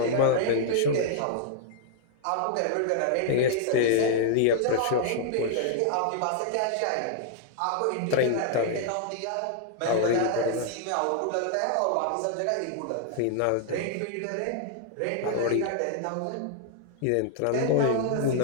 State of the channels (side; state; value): both; different; correlation -0.01